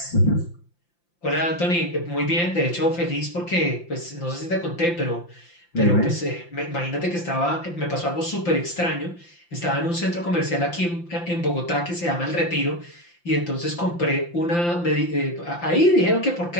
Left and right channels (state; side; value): late; right; 5.8 ms